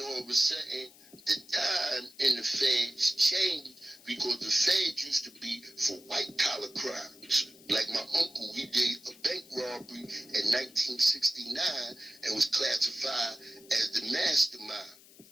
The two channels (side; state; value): left; noise; hiss, 23 dB below the sound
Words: of a sudden, the time in the feds changed because the feds used to be for white-collar crimes. Like my uncle, he did a bank robbery in 1969 and was classified as the mastermind,